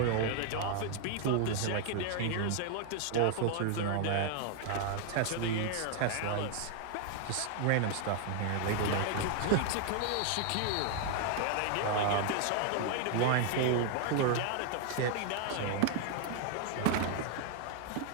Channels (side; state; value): both; different; correlation 0.00